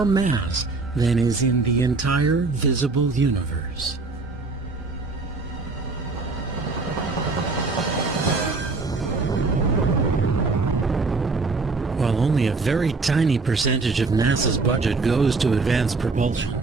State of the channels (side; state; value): left; quieter; 3.8 dB